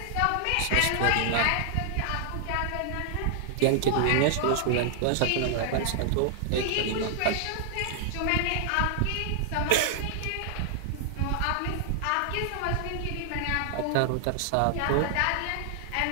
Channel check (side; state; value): both; different; correlation 0.00